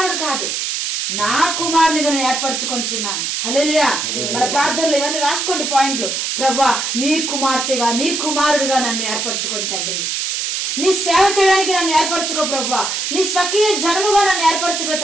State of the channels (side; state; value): right; noise; hiss, 2 dB below the sound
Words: కాదు, నా కుమారునిగా నేను ఏర్పరచుకొంచున్నాను. హల్లెలూయా. మన ప్రార్థనలు ఇవన్నీ రాసుకోండి పాయింట్లు. ప్రభువా, నీ కుమార్తెగా, నీ కుమారుడిగా నన్ను ఏర్పరచుకొని తండ్రి. నీ సేవ చేయడానికి నన్ను ఏర్పరచుకో ప్రభువా, నీ స్వకీయ జనముగా నన్ను ఏర్పరచుకో